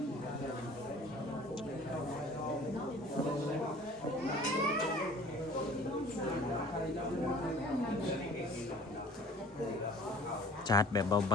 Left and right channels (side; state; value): both; normal; correlation 0.48